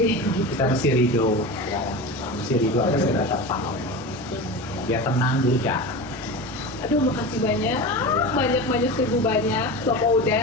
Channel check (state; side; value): noise; right; rumble, 25 dB below the sound